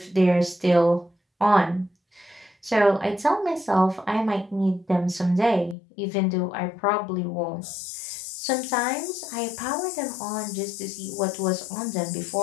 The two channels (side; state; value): right; drops out; at 5.8 s